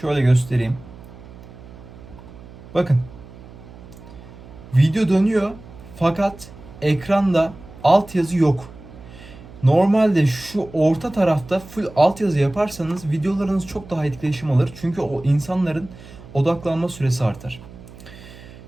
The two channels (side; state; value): right; noise; hum, 18 dB below the sound